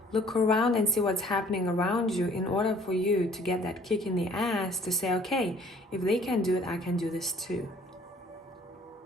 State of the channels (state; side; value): normal; both; correlation 0.56